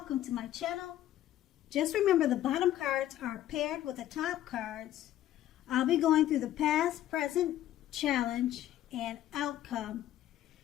to my channel. Just remember the bottom cards are paired with the top cards. I'll be going through the past, present, challenge, and outcome.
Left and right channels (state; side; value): quieter; right; 12.9 dB